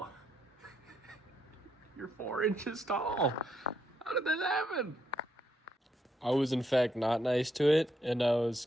You're 4 inches tall. How did that happen? I was in fact not nice to it, and I was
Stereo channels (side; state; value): both; normal; correlation 0.77